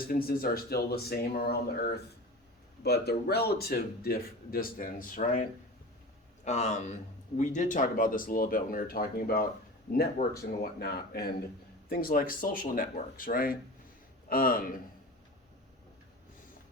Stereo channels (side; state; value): both; normal; correlation 0.33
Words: are still the same around the Earth, but the relative distance, right? We did talk about this a little bit when we were talking about networks and whatnot, and things like social networks, right?